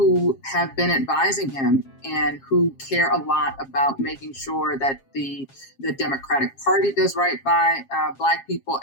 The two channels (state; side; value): late; right; 7.4 ms